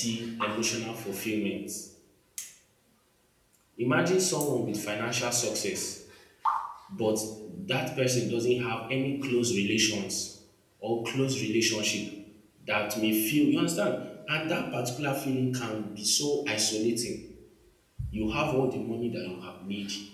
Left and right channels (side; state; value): both; identical; correlation 1.00